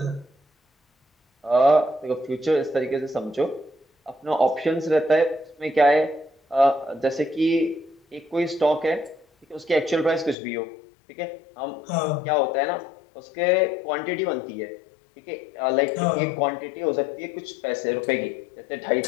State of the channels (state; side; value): drops out; right; at 10.4 s